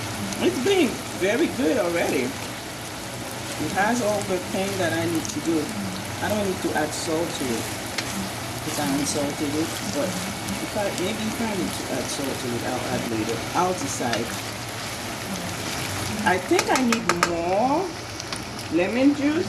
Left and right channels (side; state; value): both; identical; correlation 1.00